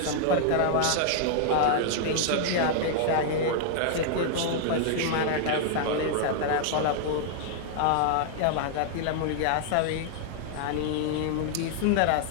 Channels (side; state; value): both; different; correlation -0.01